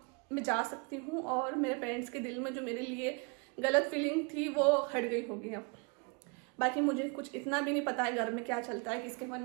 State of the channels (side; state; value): left; quieter; 33.4 dB